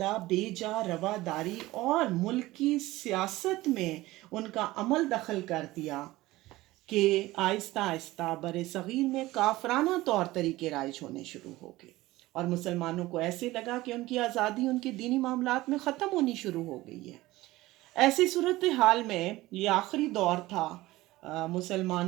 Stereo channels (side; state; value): left; quieter; 18.2 dB